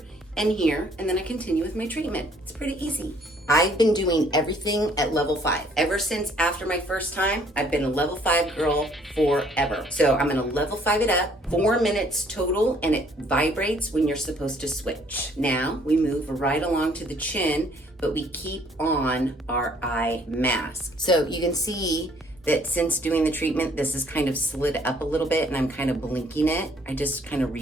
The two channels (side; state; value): both; normal; correlation 0.61